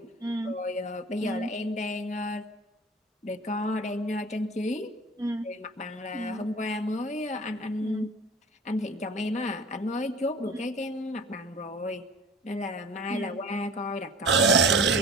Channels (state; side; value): normal; both; correlation 0.41